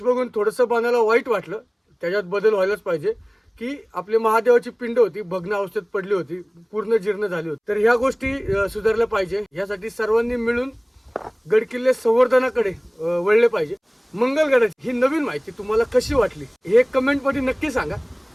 बघून थोडंसं बनायला वाईट वाटलं, त्याच्यात बदल व्हायलाच पाहिजे. की आपली महादेवाची पिंड होती भग्न अवस्थेत पडली होती, पूर्ण जीर्ण झाली होती. तर ह्या गोष्टी सुधारल्या पाहिजे. यासाठी सर्वांनी मिळून गडकिल्ले संवर्धनाकडे वळले पाहिजे. मंगलगडाची ही नवीन माहिती तुम्हाला कशी वाटली हे कमेंट मध्ये नक्की सांगा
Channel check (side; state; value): both; identical; correlation 1.00